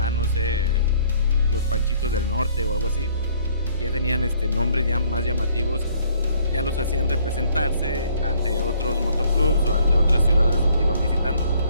no sé, los Panchitos del Norte o algo así, ya tenían nombres ya más llamativos, ya los hacían representarse ante otros motoclubs o ante otras ciudades donde iban visitando.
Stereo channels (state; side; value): inverted; both; correlation -0.61